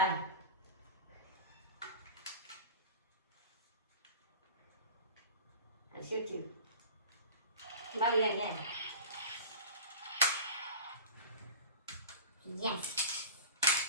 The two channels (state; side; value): inverted; both; correlation -0.34